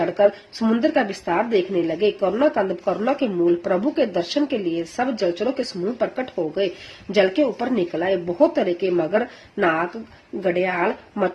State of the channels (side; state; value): both; identical; correlation 1.00